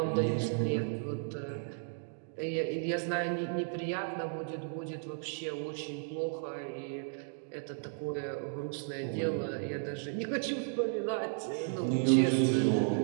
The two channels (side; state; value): left; silent; digital silence